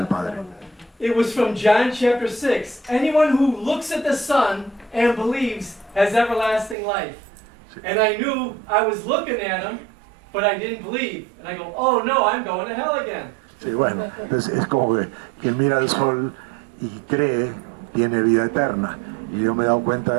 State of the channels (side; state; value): left; drops out; at 6.8 s